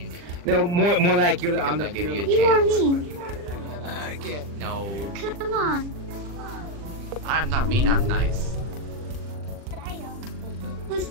No, more like you're on the You or me? No. Come on. I'm not mean, I'm nice. Was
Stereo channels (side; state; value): left; late; 40 ms